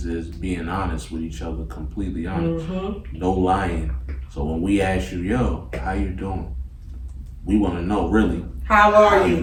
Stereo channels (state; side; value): identical; both; correlation 1.00